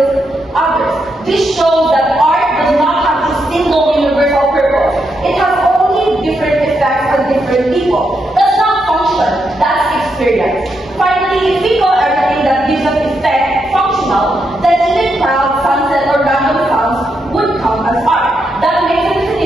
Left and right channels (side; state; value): both; normal; correlation 0.81